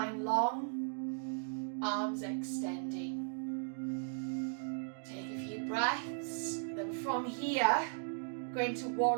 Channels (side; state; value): left; silent; digital silence